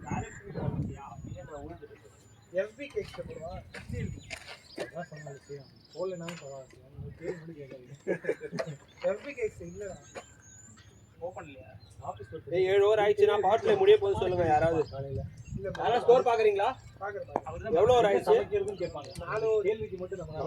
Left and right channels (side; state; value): both; identical; correlation 1.00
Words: எஃபி கேக்ஸ் போடுவா அதான் சொன்னாங்க செய்யும் போடலனாலும் பரவாயில்ல உங்களுக்கு பேர் மட்டும் கேட்காது எஃபி கேக்ஸ் இல்லடா ஓபன் இல்லையா? ஆஃபீஸ் போய் 7 ஓவர் ஆயிடுச்சுனா பாட்ல முடிய போது சொல்லுங்க யாராவது. காலையில இல்ல யாரா ஸ்கோர் பாக்குறீங்களா? பாக்குறேன் அவர்தான் எவ்வளவு ஓவர் ஆயிடுச்சு? சமைக்கிறதும் கேட்பாங்க 4 கேள்விக்கு மட்டும் நம்ம